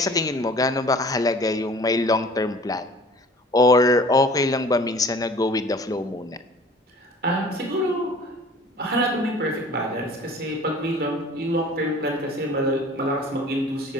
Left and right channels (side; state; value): both; normal; correlation 0.47